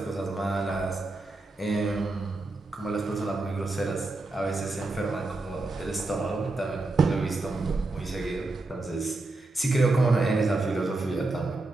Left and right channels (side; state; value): left; quieter; 3.2 dB